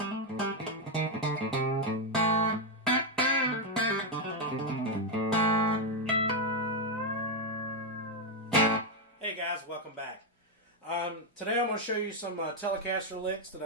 guys, welcome back. Today I'm going to show you some Telecaster licks that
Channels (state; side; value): normal; both; correlation 0.03